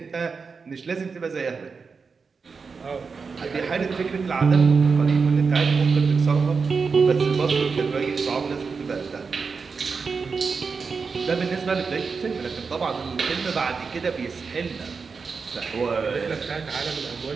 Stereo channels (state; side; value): quieter; left; 5.1 dB